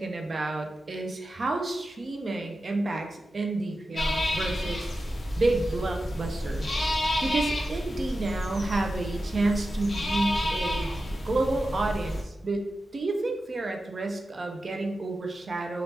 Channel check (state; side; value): normal; both; correlation 0.92